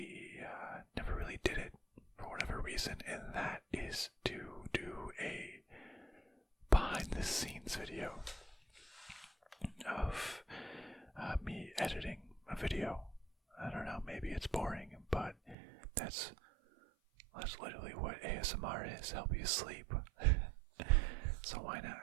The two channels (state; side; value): drops out; left; at 15.6 s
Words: did it for whatever reason, and that is to do a behind-the-scenes video of me editing a video. I don't know, maybe it's boring, but that's literally what ASMR is, help you sleep. So why not